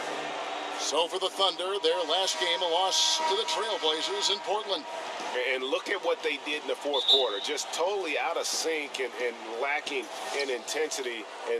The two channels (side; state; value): both; identical; correlation 1.00